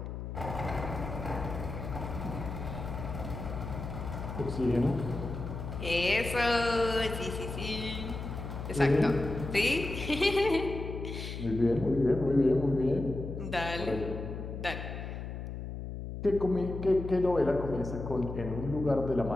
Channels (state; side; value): noise; left; hum, 7 dB below the sound